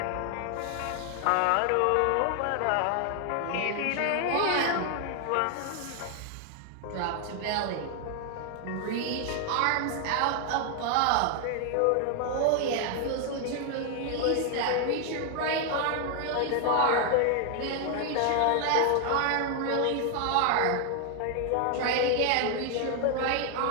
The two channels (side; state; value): both; different; correlation 0.00